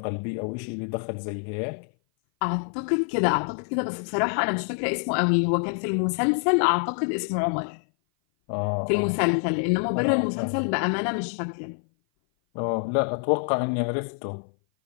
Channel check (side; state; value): right; silent; 57 dB below the other